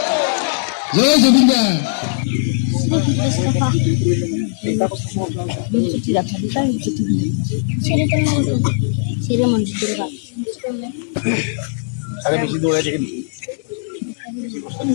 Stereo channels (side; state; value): right; silent; digital silence